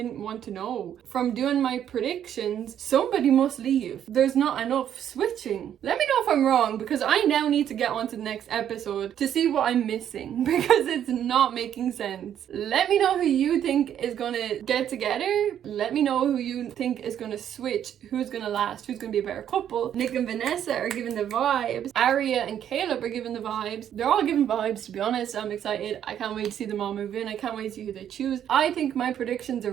want to know. From doing my predictions, somebody must leave. There's not enough switching. Let me know if I'm wrong, because I now need to get on to the next episode to see what I'm missing, because it's not making sense. Let me know who you think is gonna get together. Let me know who you think is gonna switch, who's gonna last, who's gonna be a better couple. Nick and Vanessa are giving the vibes. Aria and Caleb are giving the vibes. They're all giving vibes, to be honest. I'm excited. I can't wait to see them all move in. I can't wait to see who they choose. I think my predictions are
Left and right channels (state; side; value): quieter; left; 9.9 dB